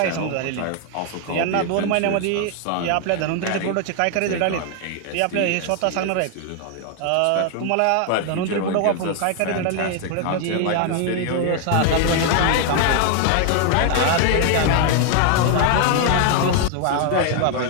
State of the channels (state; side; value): different; both; correlation 0.00